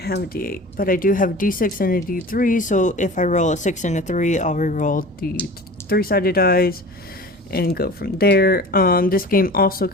a d8, but I do have a d6 and a d3. So if I roll a 6 and a 3, I'll re-roll the 3-sided dice and go from there. This game also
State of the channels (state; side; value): normal; both; correlation 0.39